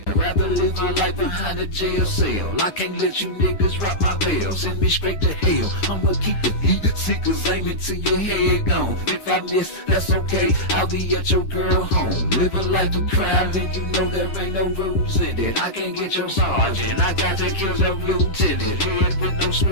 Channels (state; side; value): late; right; 10 ms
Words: I'd rather live my life behind a jail cell. I can't let you niggas rock my bell. Send me straight to hell. I'ma keep the heat, seekers aiming to your head gone. If I miss, that's okay. I'll be at your girl home. Live a life of crime, then you know there ain't no rules in it. I can't get your sergeant. I got to kill the lieutenant. Head with no